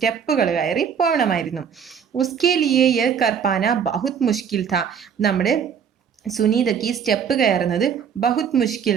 കയറി പോകണമായിരുന്നു. ഉസ്കെ ലിയേ യഹ് കർ പാന ബഹുത് മുഷ്കിൽ था. നമ്മുടെ സുനീതയ്ക്ക് ഈ സ്റ്റെപ്പ് കയറുന്നത് ബഹുത് മുഷ്കിൽ,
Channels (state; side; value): quieter; left; 7.4 dB